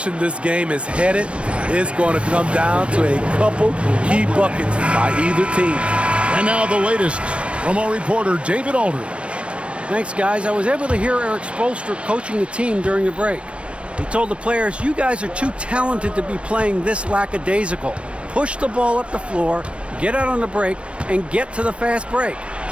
this game is headed is going to come down to a couple key buckets by either team. And now the latest from our reporter, David Aldridge. Thanks, guys. I was able to hear Eric Spoelstra coaching the team during the break. He told the players, you guys are too talented to be playing this lackadaisical. Push the ball up the floor, get out on the break, and get to the fast break.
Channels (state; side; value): late; left; 0.060 ms